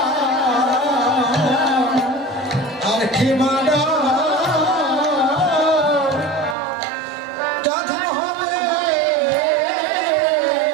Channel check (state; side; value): drops out; left; at 6.6 s